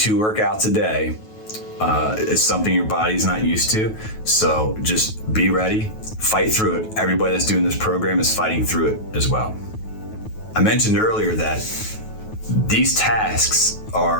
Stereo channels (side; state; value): right; late; 9.3 ms